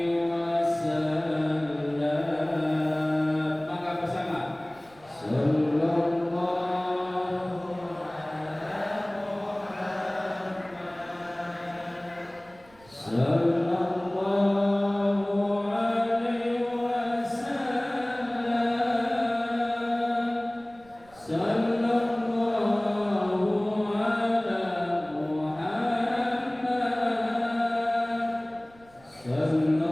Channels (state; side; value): noise; right; rumble, 27 dB below the sound